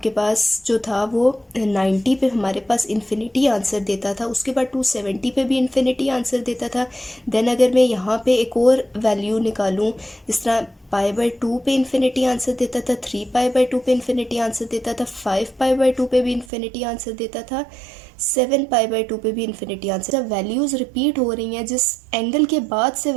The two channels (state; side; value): drops out; left; at 16.4 s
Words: पास जो था वो 90 पे हमारे पास इन्फिनिटी आंसर देता था, उसके बाद 270 पे भी इन्फिनिटी आंसर देता था. देन अगर मैं यहाँ पे एक और वैल्यू निकालूँ, जिस तरह π/2 पे इन्फिनिटी आंसर देता था, 3π/2 पे इन्फिनिटी आंसर देता था, 5π/2 पे भी इन्फिनिटी आंसर देता था, 7π/2 पे भी इन्फिनिटी आंसर. जब वैल्यूज़ रिपीट हो रही हैं, जिस एंगल के बाद से